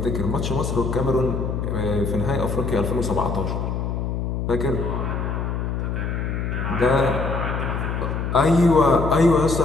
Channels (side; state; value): left; noise; hum, 2 dB below the sound